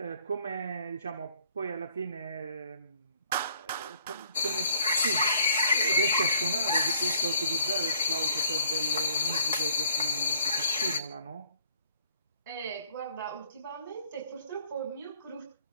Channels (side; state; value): both; inverted; correlation -0.60